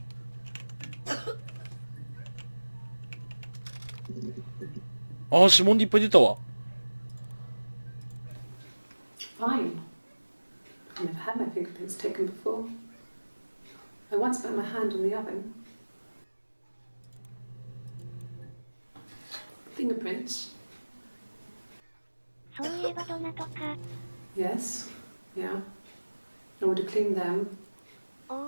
ああ、指紋でいっぱい出たわ。Fine. I've never had my fingerprints taken before. I once put my hand on the oven. Fingerprints? そういえばどなとか。 Yes. Yeah. I would have cleaned them.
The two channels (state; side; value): inverted; both; correlation -1.00